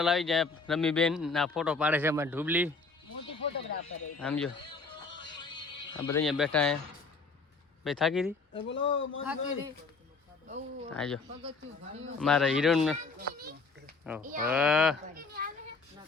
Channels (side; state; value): right; quieter; 4.2 dB